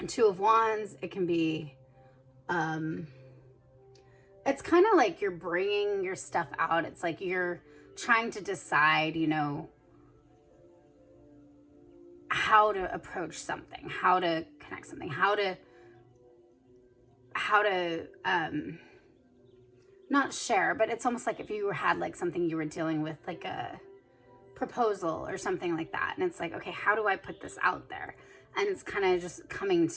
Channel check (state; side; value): identical; both; correlation 1.00